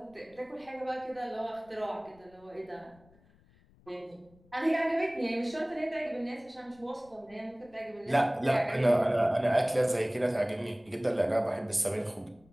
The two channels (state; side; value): noise; left; rumble, 29 dB below the sound